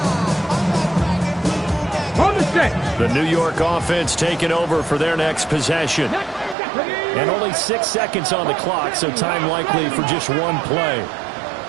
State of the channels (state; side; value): drops out; left; at 6.6 s